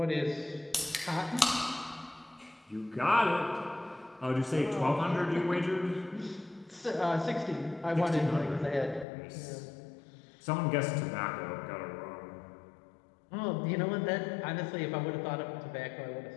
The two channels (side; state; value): right; drops out; at 9.1 s